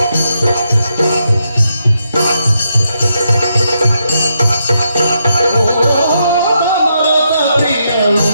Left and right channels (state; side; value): inverted; both; correlation -0.80